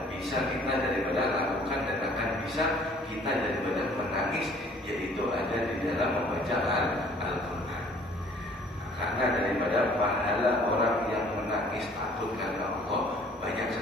bisa kita daripada lakukan dan akan bisa kita daripada menangis, yaitu ada di dalam membaca Al-Quran. Karena daripada pahala orang yang menangis takut karena Allah banyak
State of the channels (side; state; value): both; normal; correlation 0.55